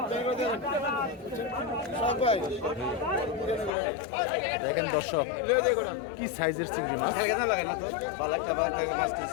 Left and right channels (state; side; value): drops out; right; at 3.7 s